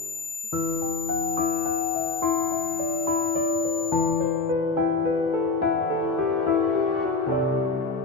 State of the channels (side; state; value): right; quieter; 4.0 dB